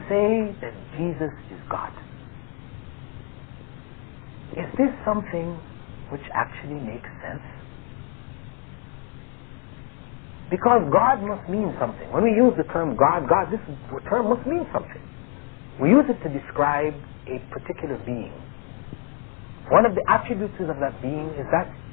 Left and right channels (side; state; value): right; quieter; 36.3 dB